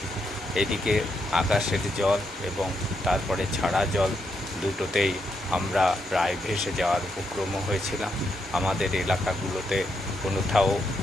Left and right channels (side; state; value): both; normal; correlation 0.80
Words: এদিকে আকাশের জল এবং তারপরে ছাড়া জল দুটোতেই আমরা প্রায় ভেসে যাওয়ার উপক্রম হয়েছিলাম। আমাদের এলাকাগুলোতে কোথাও